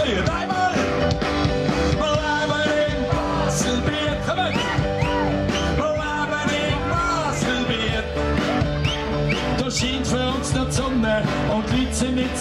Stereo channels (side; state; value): both; identical; correlation 1.00